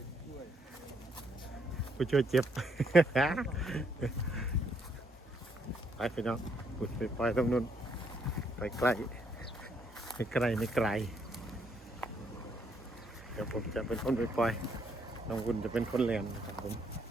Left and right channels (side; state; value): both; normal; correlation 0.72